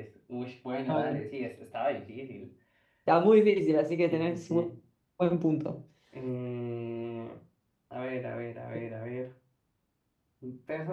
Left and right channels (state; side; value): identical; both; correlation 1.00